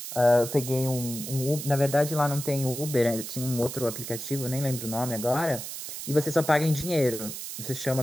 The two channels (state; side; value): noise; right; hiss, 8 dB below the sound